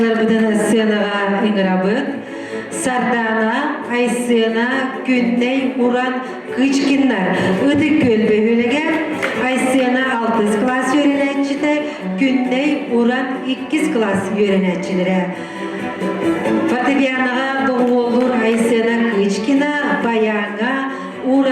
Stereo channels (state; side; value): identical; both; correlation 1.00